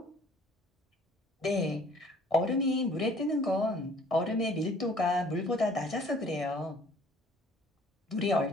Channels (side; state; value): both; normal; correlation 0.55